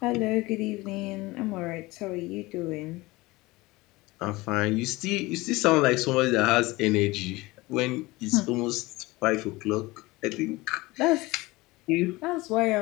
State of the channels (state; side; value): quieter; right; 21.3 dB